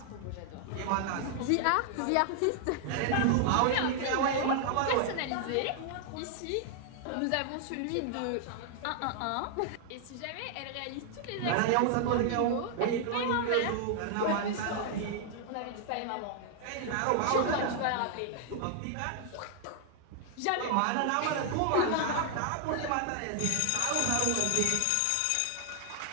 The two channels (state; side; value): different; both; correlation 0.00